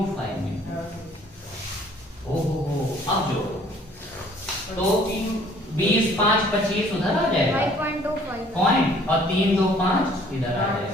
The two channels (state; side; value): normal; both; correlation 0.57